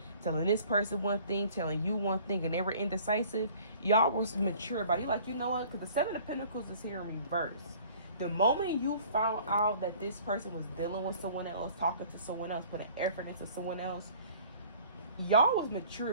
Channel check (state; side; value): inverted; both; correlation -0.51